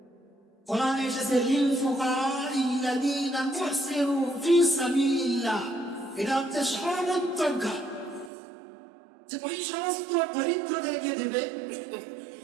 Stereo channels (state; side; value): drops out; left; at 8.3 s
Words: কোরআনে এসেছে লিল ফুকারাইল্লাযীনা মুহসিরু ফি সাবিলিল্লাহ, এটা হচ্ছে সর্বোত্তমকার, যে ওই সমস্ত দরিদ্রদেরকে দেবে